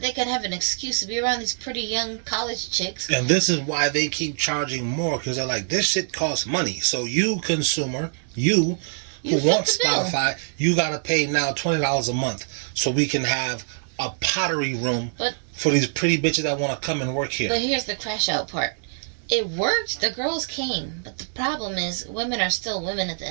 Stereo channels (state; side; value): silent; left; digital silence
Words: they can have an excuse to be around these pretty young college chicks. And this is why they keep charging more, because they're like, this shit costs money. So you, consumer, you who want Spotify, you got to pay now $20 a month so we can have a pottery room But for these pretty bitches that want to come and work here. But here's the crash out part. It worked. The girls came. But the problem is, women are still women at the